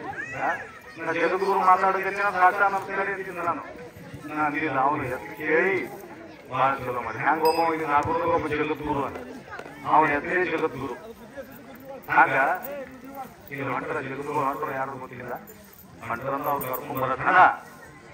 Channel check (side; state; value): both; identical; correlation 1.00